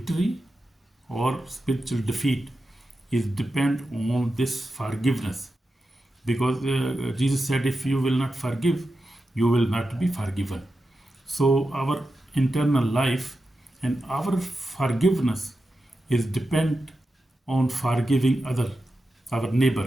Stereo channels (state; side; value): normal; both; correlation 0.90